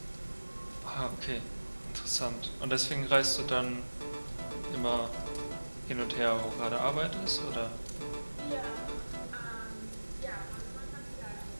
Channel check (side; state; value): both; inverted; correlation -1.00